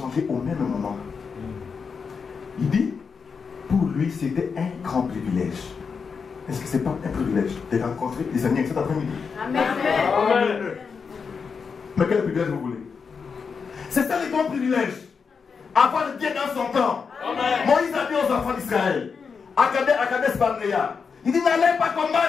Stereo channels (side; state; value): right; quieter; 5.7 dB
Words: au même moment. Il dit, pour lui, c'était un grand privilège. Est-ce que ce n'est pas un privilège de rencontrer les amis cet après-midi? Amen. Mais quel privilège vous voulez? C'est ça le grand privilège. Avoir Dieu dans son temps. Moïse a dit aux enfants d'Israël, à Kadesh Barnea, il dit, n'allez pas